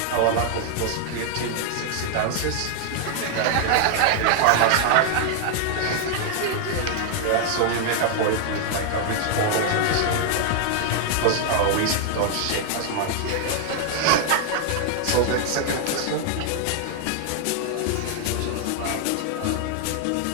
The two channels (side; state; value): both; different; correlation 0.00